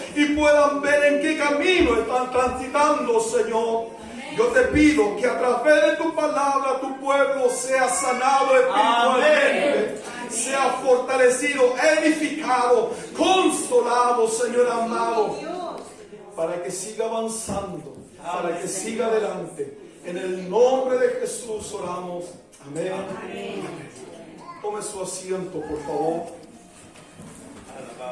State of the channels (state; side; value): identical; both; correlation 1.00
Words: y puedan ver en qué camino están transitando, Señor. Yo te pido que a través de tu palabra tu pueblo sea sanado espiritualmente, sea fortalecido, edificado, consolado, Señor amado, para que siga avanzando, para que siga adelante. En el nombre de Jesús oramos. Amén. Amén. Tome su asiento, por favor.